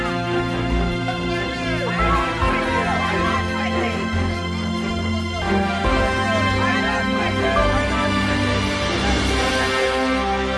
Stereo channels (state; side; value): identical; both; correlation 1.00